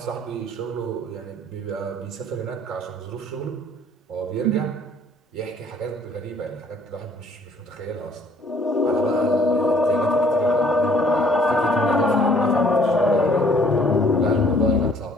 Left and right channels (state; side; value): normal; both; correlation 0.59